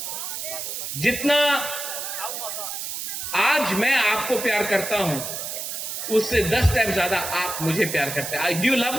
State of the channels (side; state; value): right; noise; hiss, 5 dB below the sound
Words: जितना आज मैं आपको प्यार करता हूं, उससे 10 टाइम ज्यादा आप मुझे प्यार करते हैं। Do you love